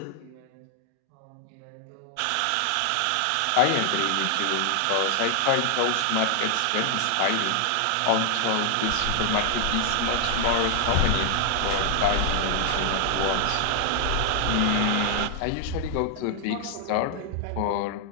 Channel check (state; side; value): different; both; correlation 0.00